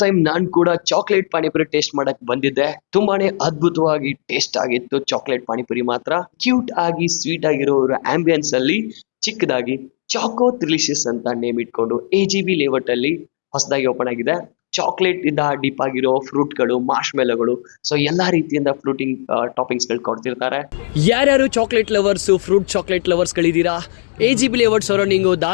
ಟೈಮ್ ನಾನ್ ಕೂಡ ಚಾಕ್ಲೇಟ್ ಪಾನಿಪುರಿ ಟೇಸ್ಟ್ ಮಾಡಕ್ ಬಂದಿದ್ದೆ. ತುಂಬಾನೇ ಅದ್ಭುತವಾಗಿ ಟೇಸ್ಟ್ ಆಗಿತ್ತು. ಚಾಕ್ಲೇಟ್ ಪಾನಿಪುರಿ ಮಾತ್ರ ಕ್ಯೂಟ್ ಆಗಿ ಸ್ವೀಟ್ ಆಗಿರೋ ಆಂಬಿಯನ್ಸ್ ಅಲ್ಲಿ ಚಿಕ್ಕದಾಗಿ ಚಾಕೋ ತ್ರಿಲಿಷಿಯಸ್ ಅಂತ ನೇಮ್ ಇಟ್ಕೊಂಡು AGB ಲೇಔಟ್ ಅಲ್ಲಿ ಹೊಸದಾಗಿ ಓಪನ್ ಆಗಿದೆ. ಚಾಕ್ಲೇಟ್ ಇಂದ ಡೀಪ್ ಆಗಿರೋ ಫ್ರೂಟ್ಗಳು, ಮಾರ್ಷ್ಮೆಲೋಗಳು, ಸೊ ಎಲ್ಲಾ ರೀತಿಯಿಂದ ಫ್ರೂಟಿಂಗ್ ಟಾಪಿಂಗ್ಸ್ ಗಳು ಕೊಡ್ತಿರ್ತಾರೆ. ಯಾರ್ಯಾರು ಚಾಕ್ಲೇಟ್ ಲವರ್ಸು, ಫ್ರೂಟ್ ಚಾಕ್ಲೇಟ್ ಲವರ್ಸ್ಗಳಿದ್ದೀರಾ? AGB layout surrounding,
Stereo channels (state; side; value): silent; right; digital silence